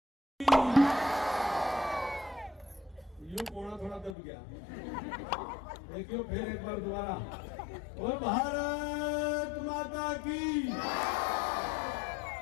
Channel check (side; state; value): right; drops out; at 4.1 s